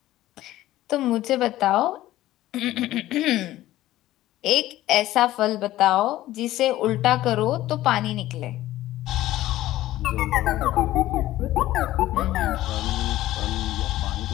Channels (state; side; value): quieter; right; 15.1 dB